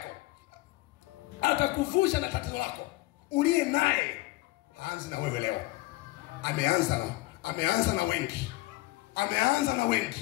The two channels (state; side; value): quieter; right; 19.7 dB